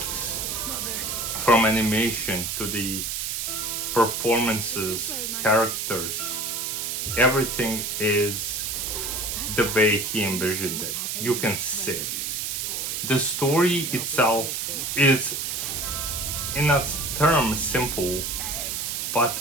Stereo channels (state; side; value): noise; right; hiss, 2 dB below the sound